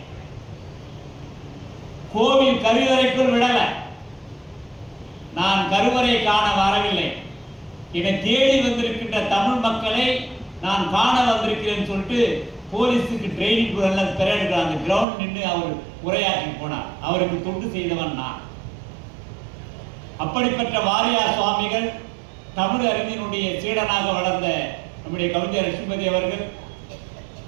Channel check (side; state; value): left; drops out; at 15.1 s